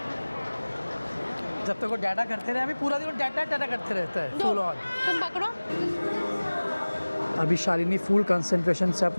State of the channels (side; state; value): both; inverted; correlation -1.00